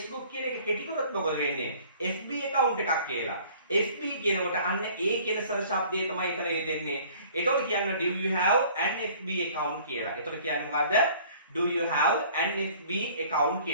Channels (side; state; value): both; inverted; correlation -0.52